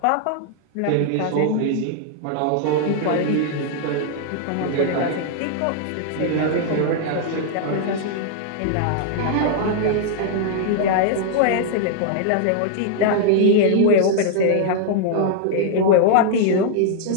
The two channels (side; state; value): both; different; correlation 0.00